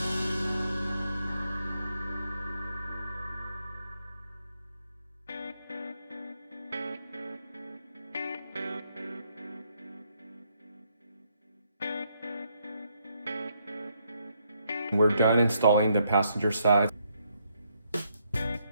We're done installing the passenger side.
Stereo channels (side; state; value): both; inverted; correlation -0.74